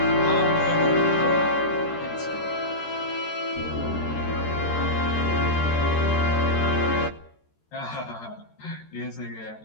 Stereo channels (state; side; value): late; right; 13 ms